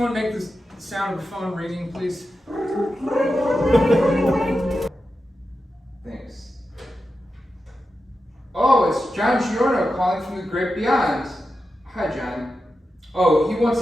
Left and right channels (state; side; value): normal; both; correlation 0.90